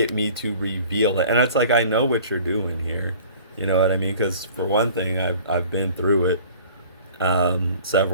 me to reveal it. And it's like, I know what you're doing here. You know what I mean? Because for one thing, I've been through it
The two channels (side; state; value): both; inverted; correlation -0.47